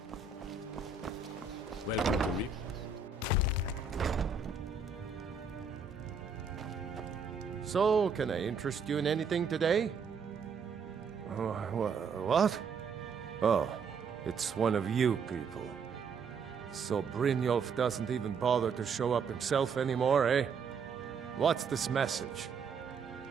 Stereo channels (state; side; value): quieter; left; 5.3 dB